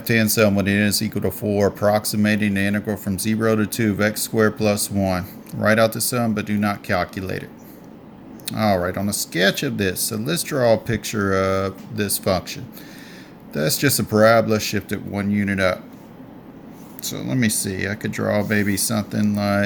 sum when n is equal to 4, approximating the integral from 0 to 2 of x squared plus 1. Write out the sum, but do not calculate it. Alright, on a sketch of this, so let's draw a picture of this function. That's just a parabola shifted 1 unit up. So let me see, I could draw maybe something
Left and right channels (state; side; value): identical; both; correlation 1.00